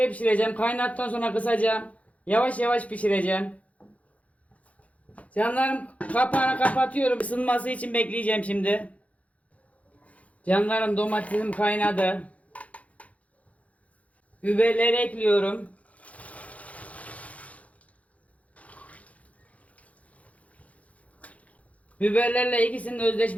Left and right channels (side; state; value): right; late; 0.067 ms